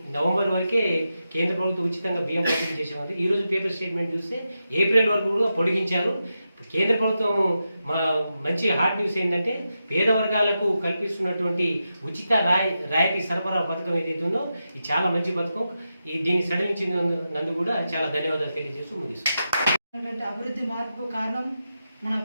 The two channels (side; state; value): both; inverted; correlation -0.89